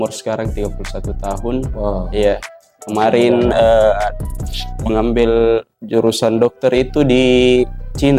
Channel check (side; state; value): both; identical; correlation 1.00